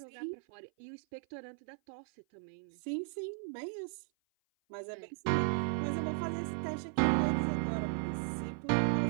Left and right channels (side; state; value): left; silent; 54 dB below the other